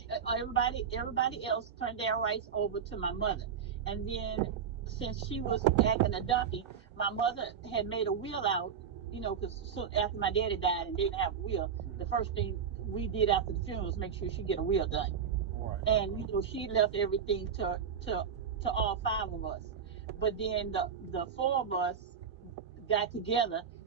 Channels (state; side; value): quieter; left; 7.2 dB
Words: Everybody else turned their rights over to my mother, and then since she was acting a donkey, my mother had made a will out. Because soon after my daddy died and didn't have a will, the first thing we did after the funeral was make sure she get a will done. Right. And she left everything to all 5 of us. But then the 4 of us got together